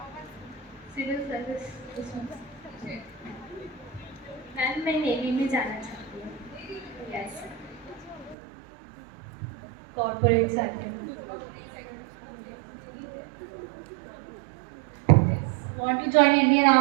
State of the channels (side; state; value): left; drops out; at 8.3 s